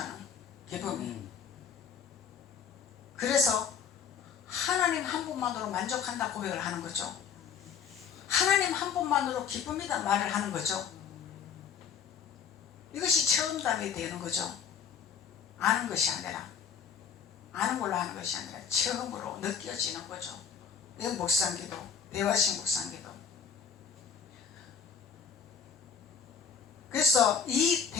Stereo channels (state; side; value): quieter; right; 6.9 dB